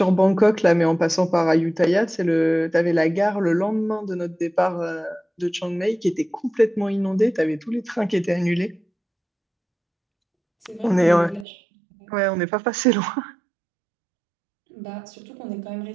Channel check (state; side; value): drops out; left; at 11.5 s